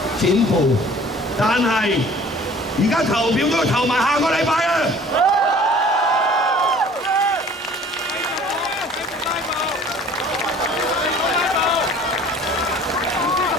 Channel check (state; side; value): normal; both; correlation 0.49